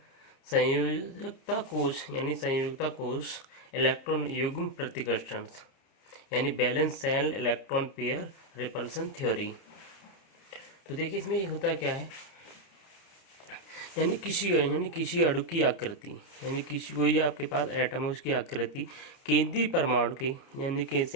संयोजकता कोश यानी संयोजकता कोश, इलेक्ट्रॉन युग्म प्रतिकर्षण यानी balance cell electron pair repulsion theory. तो देखिए इसमें ये होता क्या है, यानी किसी अणु की आकृति, यानी किसी कोई आपके पास एटम है उसकी आकृति केंद्रीय परमाणु के यानी कि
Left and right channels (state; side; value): late; right; 30 ms